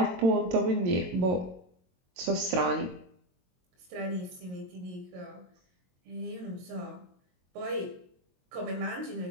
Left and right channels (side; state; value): left; late; 22 ms